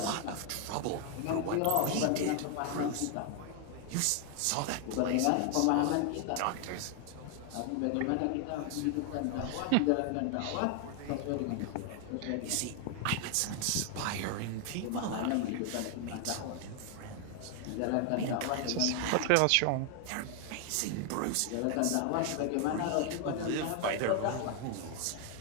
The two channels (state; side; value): different; both; correlation 0.00